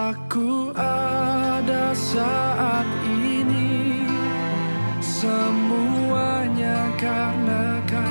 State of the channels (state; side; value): inverted; both; correlation -1.00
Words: ada saat ini, semuanya karena